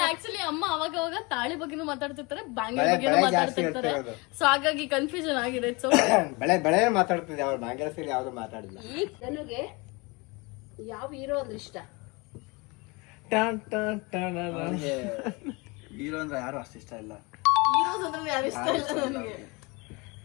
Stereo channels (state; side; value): quieter; right; 27.0 dB